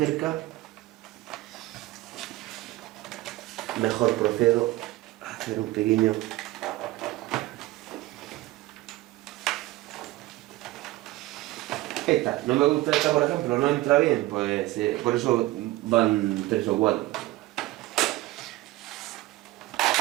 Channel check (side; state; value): left; quieter; 18.0 dB